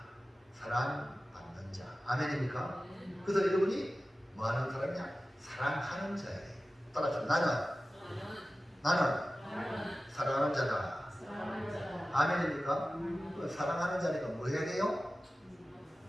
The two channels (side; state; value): both; normal; correlation 0.95